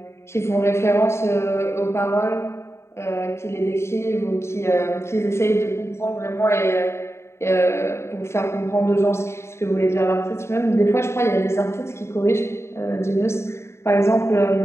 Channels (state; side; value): late; right; 0.13 ms